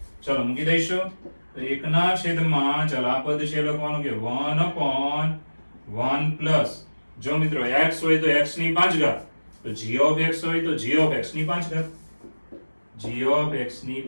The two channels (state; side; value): inverted; both; correlation -1.00